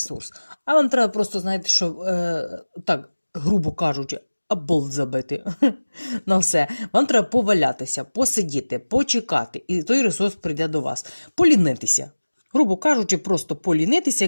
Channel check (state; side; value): inverted; both; correlation -1.00